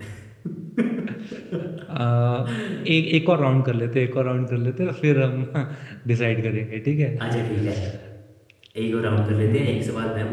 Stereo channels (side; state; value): both; identical; correlation 1.00